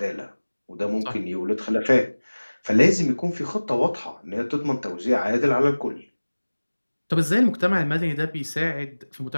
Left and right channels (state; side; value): inverted; both; correlation -1.00